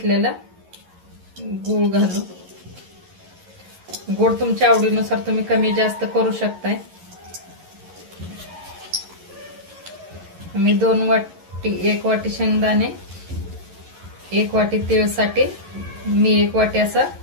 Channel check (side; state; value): left; late; 11 ms